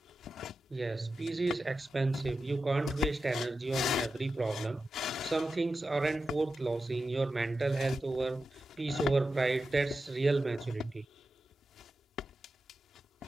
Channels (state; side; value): normal; both; correlation 0.91